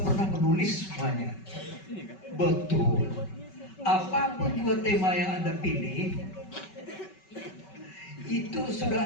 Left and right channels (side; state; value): right; late; 5.3 ms